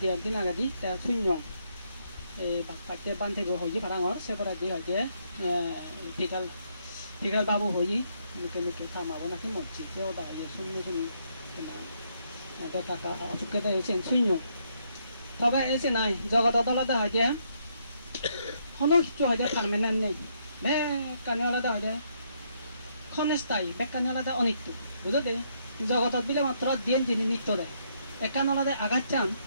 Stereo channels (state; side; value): inverted; both; correlation -0.73